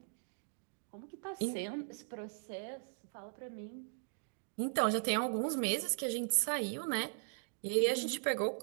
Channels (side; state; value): left; silent; digital silence